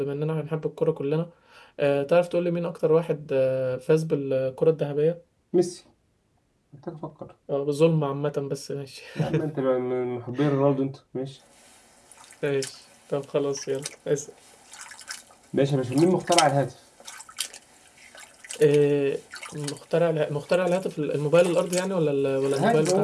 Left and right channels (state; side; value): identical; both; correlation 1.00